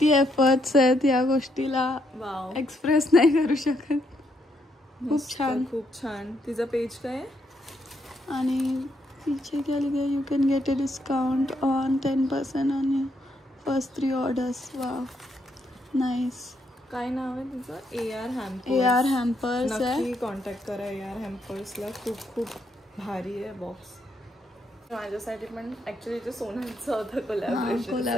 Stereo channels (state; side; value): normal; both; correlation 0.76